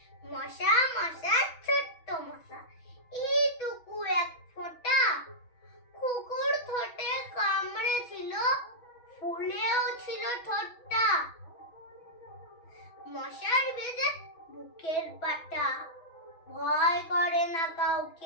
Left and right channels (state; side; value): late; right; 6.2 ms